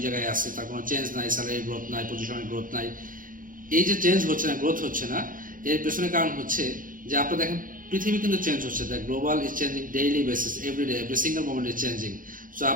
জায়গায় আছে, তার কোনো চেঞ্জ নাই, স্যালারি গ্রোথ নাই, পজিশনের গ্রোথ নাই। এই যে চেঞ্জ হচ্ছে না, গ্রোথ হচ্ছে না, এর পেছনে কারণ হচ্ছে যে আপনার দেখেন পৃথিবী কিন্তু চেঞ্জ হচ্ছে, the global is changing daily basis, everyday, every single moment is changing. So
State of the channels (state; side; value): late; left; 0.40 ms